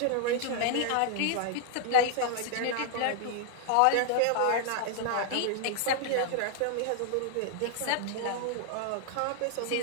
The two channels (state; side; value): different; both; correlation 0.00